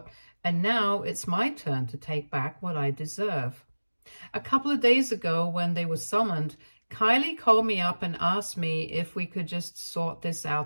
and now it's my turn to take back what I deserve. A couple of days ago, when they were summoned, Kylie called me up and asked me if we could just sort this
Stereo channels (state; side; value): inverted; both; correlation -1.00